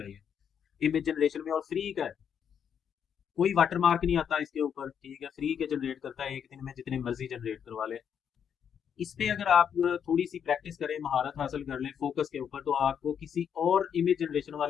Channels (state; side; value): quieter; right; 8.0 dB